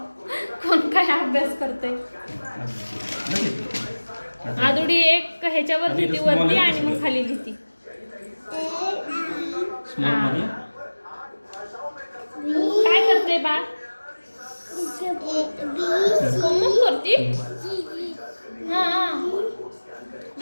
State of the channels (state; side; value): inverted; both; correlation -1.00